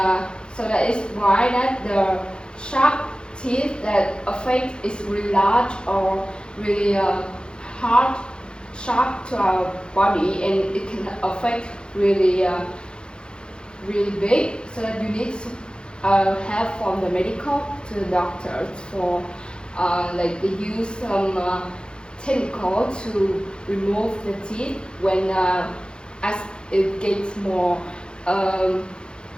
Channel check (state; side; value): late; right; 0.050 ms